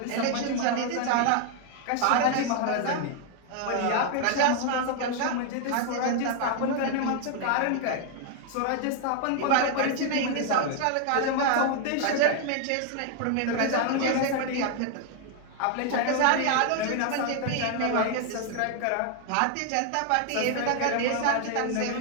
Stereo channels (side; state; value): both; different; correlation 0.00